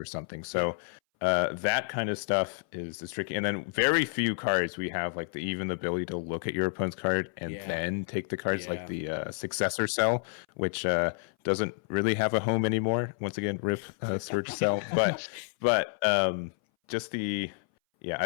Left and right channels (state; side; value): silent; right; 58 dB below the other